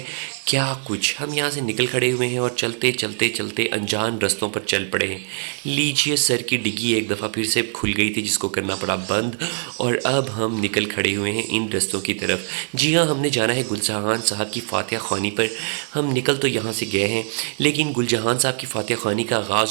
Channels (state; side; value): silent; left; 64 dB below the other